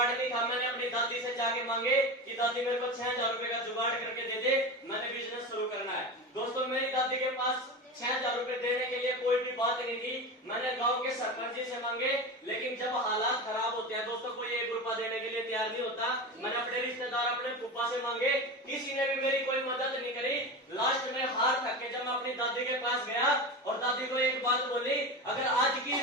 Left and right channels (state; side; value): normal; both; correlation 0.25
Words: नहीं था। मैंने अपनी दादी से जाके मांगे कि दादी मेरे को 6,000 रुपए का जुगाड़ करके दे दे, मैंने बिजनेस शुरू करना है। दोस्तों मेरी दादी के पास 6,000 रुपए देने के लिए कोई भी बात नहीं थी। मैंने गांव के सरपंच जी से मांगे, लेकिन जब हालात खराब होते हैं दोस्तों, कोई 1 रुपया देने के लिए तैयार नहीं होता। मैंने अपने रिश्तेदार, अपने फूफा से मांगे, किसी ने भी मेरी कोई मदद नहीं करी। लास्ट में हार थक के जब मैं अपनी दादी के पास गया और दादी को एक बात बोली, अगर आज की